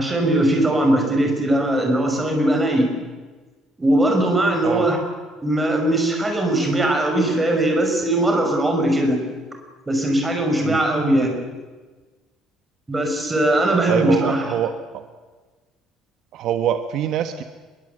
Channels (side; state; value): both; normal; correlation 0.70